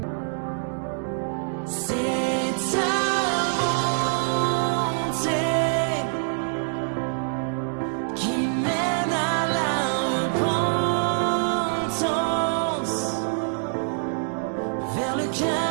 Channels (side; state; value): left; silent; 62 dB below the other